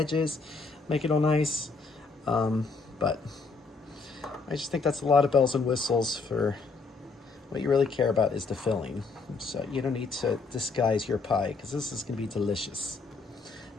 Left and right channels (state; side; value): quieter; right; 4.2 dB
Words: make it all nice. But I just think that's a lot of bells and whistles for what you really care about is the filling. So you don't need to disguise your pie because this is going to be delicious.